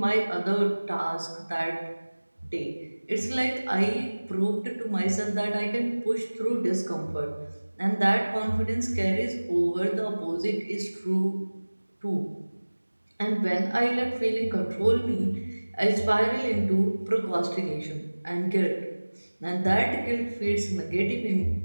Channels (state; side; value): inverted; both; correlation -1.00